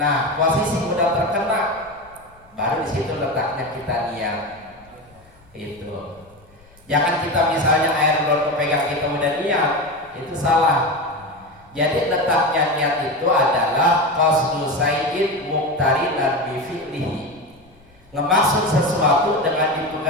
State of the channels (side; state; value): left; noise; rumble, 29 dB below the sound